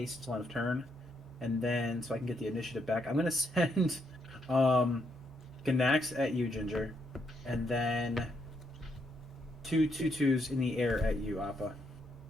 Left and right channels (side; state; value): both; normal; correlation 0.76